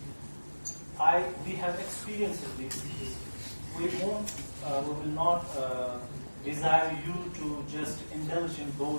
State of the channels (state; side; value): inverted; both; correlation -1.00